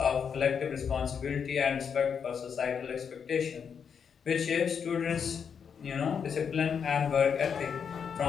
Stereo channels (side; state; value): right; quieter; 6.9 dB